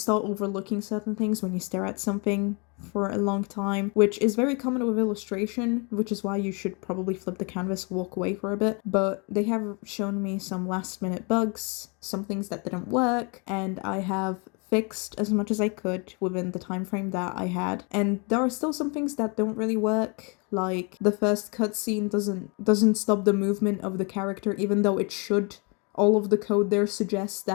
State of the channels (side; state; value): right; quieter; 33.0 dB